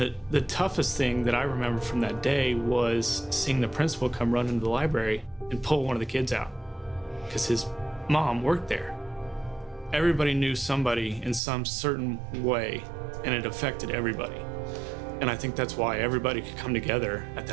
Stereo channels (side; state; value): left; drops out; at 11.4 s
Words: toughest thing that I remember from that day was seeing the principal come run into the library and pull one of the kids out, because his mom worked there. Everybody knew somebody in some certain way, and it affected everybody. And I think that's why everybody could come together at